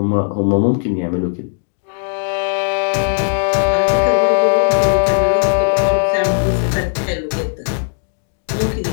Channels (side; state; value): right; silent; digital silence